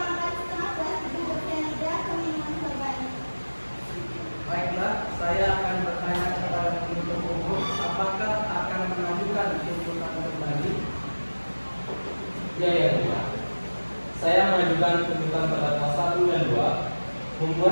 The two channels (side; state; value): both; inverted; correlation -1.00